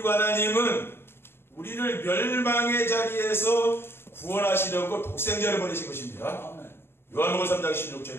하나님은 우리를 멸망의 자리에서 구원하시려고 독생자를 보내신 것입니다. 요한복음 3장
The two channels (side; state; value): right; late; 0.11 ms